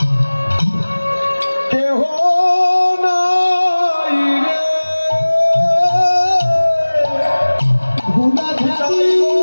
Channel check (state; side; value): inverted; both; correlation -1.00